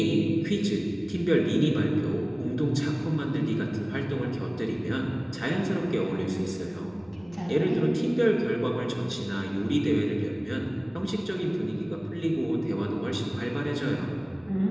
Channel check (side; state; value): left; noise; hum, 27 dB below the sound